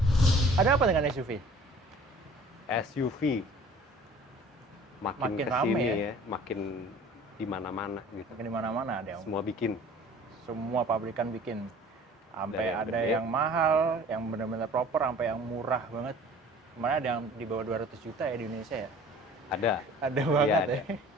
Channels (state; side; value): normal; both; correlation 0.48